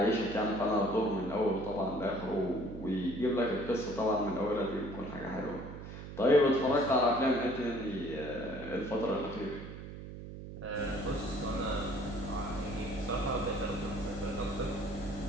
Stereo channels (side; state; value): right; noise; hum, 11 dB below the sound